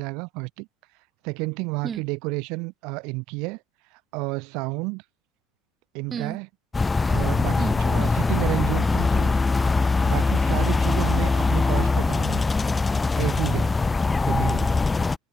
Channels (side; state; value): both; normal; correlation 0.81